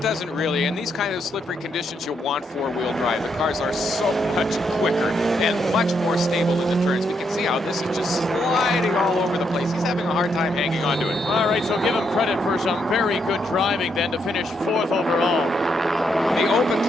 doesn't really. In these kind of slippery conditions, you'll want 4-wheel drive. The cars are so much quicker and much more stable in the turns. We can see how this is just sliding all over the place. He's having a hard time hanging on to it. All right, so give him credit for some very good driving then to finish 4th overall. The open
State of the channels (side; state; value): both; normal; correlation 0.77